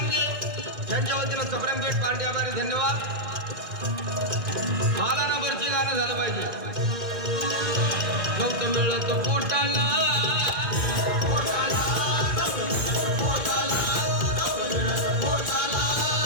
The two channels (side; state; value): left; late; 2.2 ms